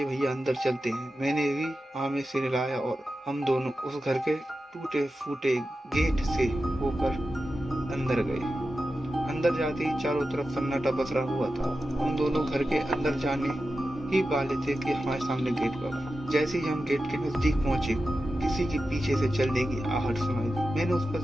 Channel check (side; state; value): both; normal; correlation 0.92